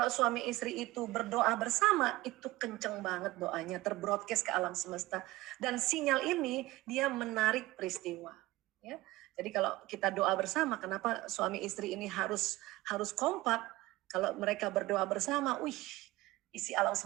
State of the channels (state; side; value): quieter; left; 18.8 dB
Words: suami istri itu berdoa bersama, itu kenceng banget doanya. Terbroadcast ke alam semesta. Dan sinyal ini dia menarik peristiwa. Ya. Jadi kalau kita doa bersama, kenapa suami istri ini harus kompak? Kalau mereka berdoa bersama, isi alam